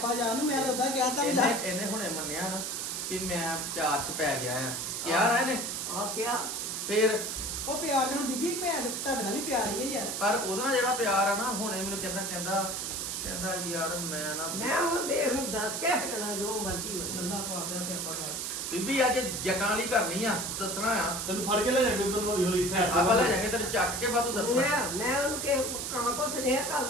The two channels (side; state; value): right; noise; hiss, 3 dB below the sound